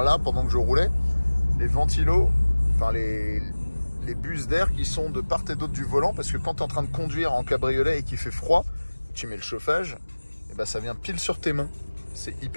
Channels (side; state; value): both; inverted; correlation -1.00